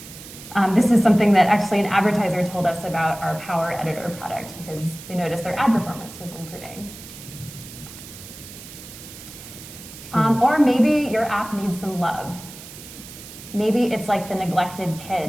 This is something that actually an advertiser told us about our Power Editor product because they noticed their ad performance was improving. Or maybe your app needs some love. Maybe it's like the neglected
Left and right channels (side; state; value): right; noise; hiss, 15 dB below the sound